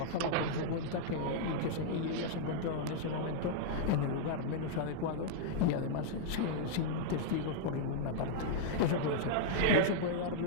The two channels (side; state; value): both; different; correlation -0.01